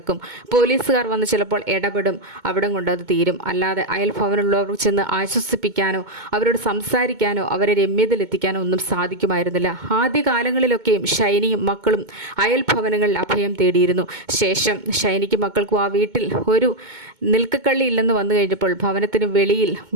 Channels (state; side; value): late; left; 2.2 ms